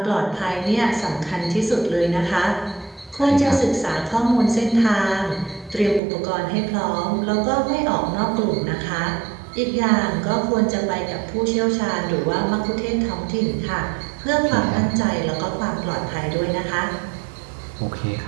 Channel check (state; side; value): drops out; left; at 6.0 s